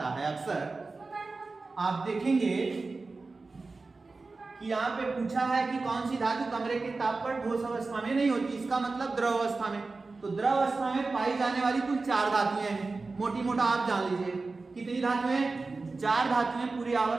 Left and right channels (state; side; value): quieter; left; 3.8 dB